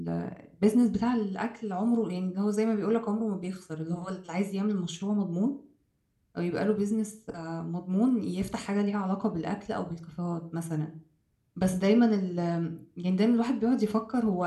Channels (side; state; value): both; identical; correlation 1.00